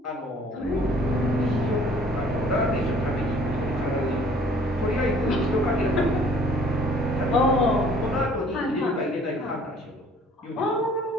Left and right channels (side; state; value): both; normal; correlation 0.55